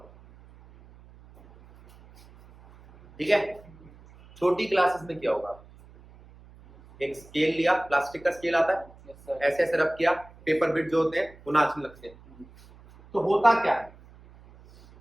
ठीक है, छोटी क्लासेस में क्या होगा? एक स्केल लिया, प्लास्टिक का स्केल आता है, ऐसे ऐसे रब किया, पेपर बिट जो होते हैं वो नाचने लगते हैं। तो होता क्या है?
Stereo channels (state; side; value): noise; right; hum, 24 dB below the sound